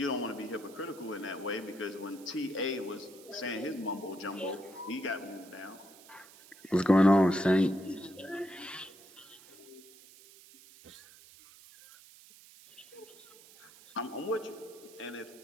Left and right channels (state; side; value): noise; right; hiss, 22 dB below the sound